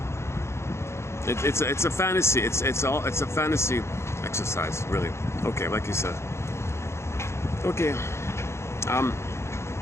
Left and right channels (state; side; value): late; right; 0.13 ms